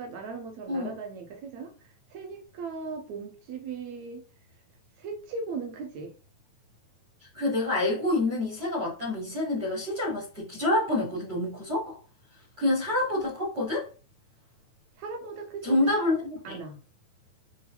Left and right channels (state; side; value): late; left; 9.1 ms